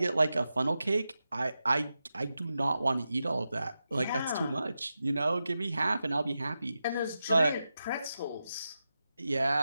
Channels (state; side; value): inverted; both; correlation -0.90